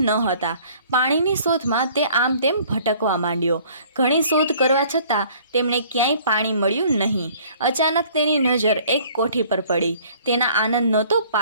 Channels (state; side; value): inverted; both; correlation -0.54